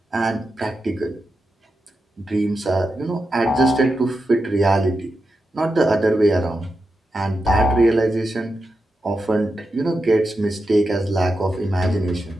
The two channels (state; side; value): normal; both; correlation 0.88